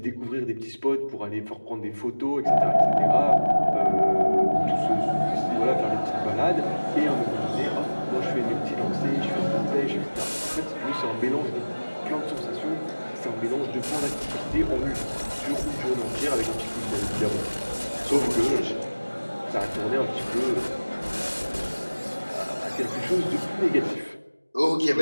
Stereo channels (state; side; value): inverted; both; correlation -1.00